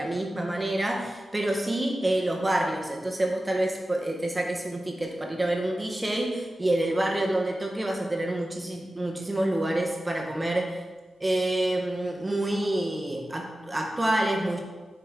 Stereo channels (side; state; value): both; normal; correlation 0.94